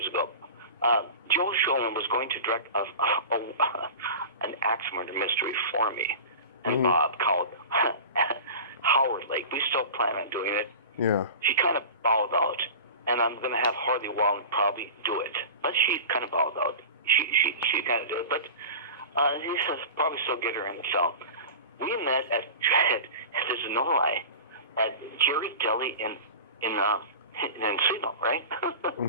ago, Joe Schoen was going to direct an axe murder mystery for me. and Bob called Howard Lake. We still plan on doing it. Yeah. She kind of bowed out, and I'm going to have Harley Wong probably do it. But she kind of bowed out. She kind of did it, but he says probably still get her in the film. We met at there's no lie, at Jerry's Deli in Encino, right?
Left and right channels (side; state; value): both; inverted; correlation -0.35